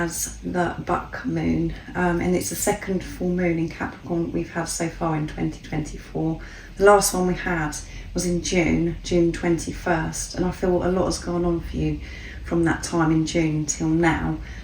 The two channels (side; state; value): both; identical; correlation 1.00